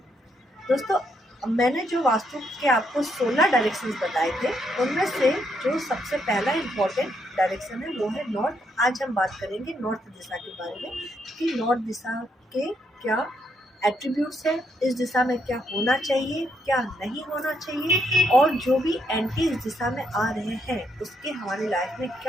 दोस्तों, मैंने जो वास्तु के आपको 16 डायरेक्शंस बताए थे, उनमें से जो सबसे पहला इम्पोर्टेंट डायरेक्शन है वो है नॉर्थ। आज हम बात करेंगे नॉर्थ दिशा के बारे में कि नॉर्थ दिशा के क्या एट्रीब्यूट्स है, इस दिशा में क्या होना चाहिए, क्या नहीं होना चाहिए, और जो भी एंटी इस दिशा में आ रहे हैं उसके हमारी लाइफ में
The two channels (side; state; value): both; normal; correlation 0.76